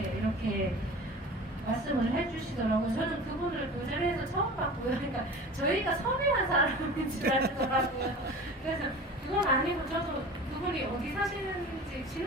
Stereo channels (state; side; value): normal; both; correlation 0.38